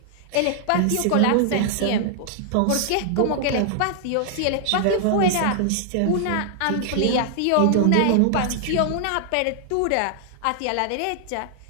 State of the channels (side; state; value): both; different; correlation -0.01